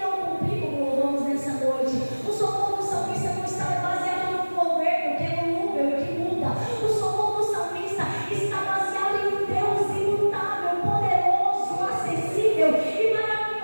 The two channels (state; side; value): inverted; both; correlation -1.00